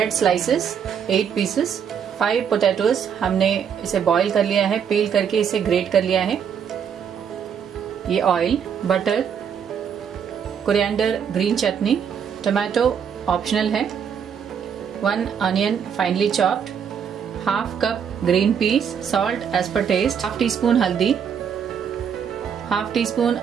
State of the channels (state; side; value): quieter; left; 7.6 dB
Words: स्लाइसेस 8 पीसेस, 5 पोटैटोज हमने इसे बॉईल कर लिया है, पील करके इसे ग्रेट कर लिया है। ये oil, butter, coriander, green chutney, tomato optional है, 1 onion finely chopped, half cup green peas, salt as पर टेस्ट, हाफ टी स्पून हल्दी, हाफ टी स्पून